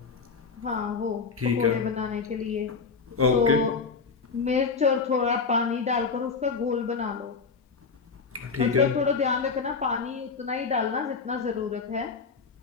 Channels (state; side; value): quieter; right; 5.0 dB